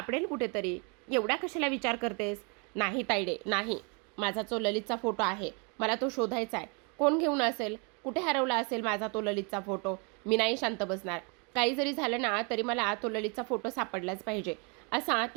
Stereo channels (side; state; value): left; quieter; 34.2 dB